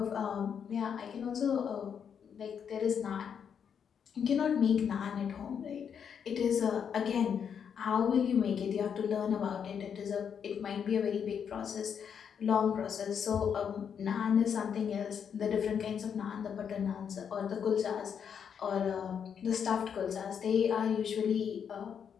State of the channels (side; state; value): right; quieter; 7.5 dB